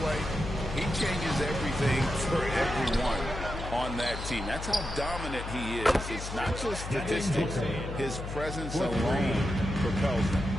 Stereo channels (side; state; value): left; noise; hum, 7 dB below the sound